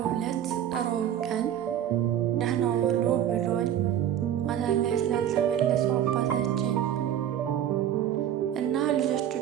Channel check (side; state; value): left; quieter; 10.6 dB